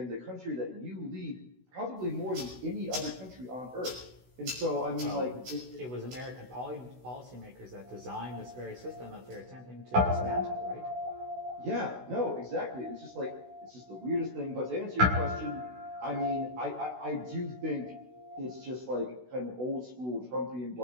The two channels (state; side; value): late; left; 16 ms